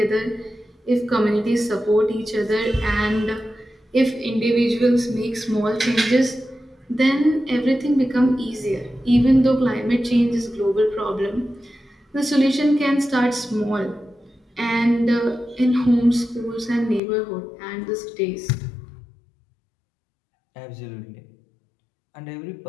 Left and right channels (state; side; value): drops out; right; at 17.0 s